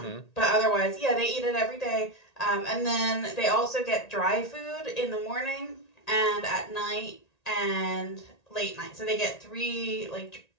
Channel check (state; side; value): late; right; 1.9 ms